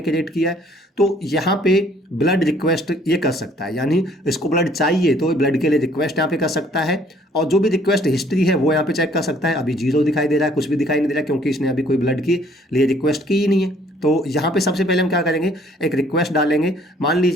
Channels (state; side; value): normal; both; correlation 0.60